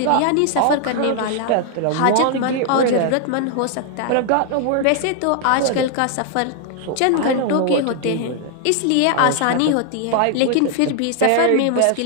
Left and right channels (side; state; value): both; different; correlation 0.00